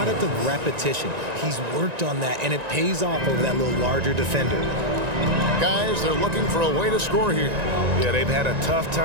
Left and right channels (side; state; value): left; late; 1.9 ms